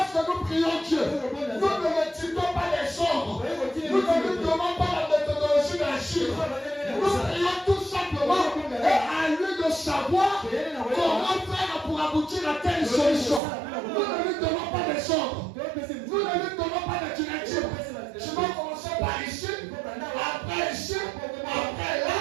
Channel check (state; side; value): drops out; left; at 13.4 s